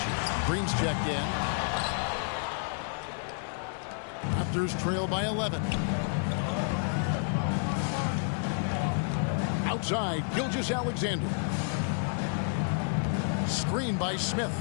Green's checked in. Raptors trail by 11. Outside, Gilgeous-Alexander. Screen by Smith.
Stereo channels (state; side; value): silent; right; digital silence